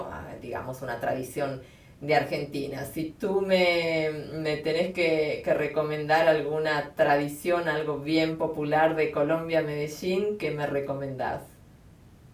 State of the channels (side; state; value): both; identical; correlation 1.00